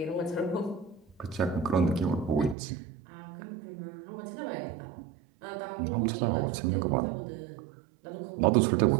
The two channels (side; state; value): left; drops out; at 2.6 s